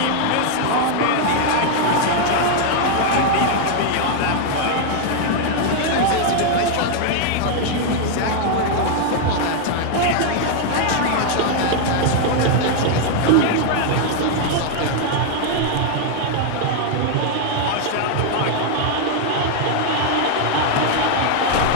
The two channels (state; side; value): different; both; correlation 0.00